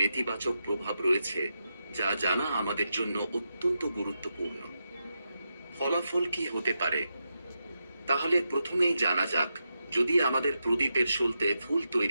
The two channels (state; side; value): inverted; both; correlation -0.87